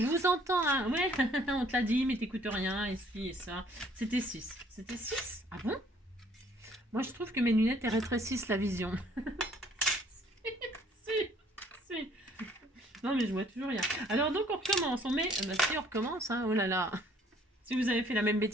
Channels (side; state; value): both; normal; correlation 0.60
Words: vous entends. Hein. Ouais, on te l'a dit, mais t'écoutes rien. Et ci et ça. C'était 6. C'était 6? Ah bon? Moi, je trouve que mes lunettes, elles rétrécissent la vision. si. Non, mais je vois toujours rien. Alors, donc, on recommence. On met... Bah, si, on recommence. Hein. Oh là là. Si vous avez fait la même